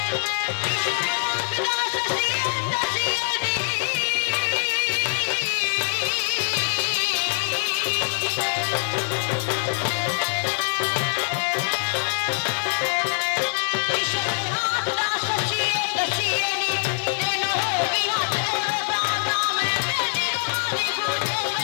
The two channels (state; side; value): silent; right; digital silence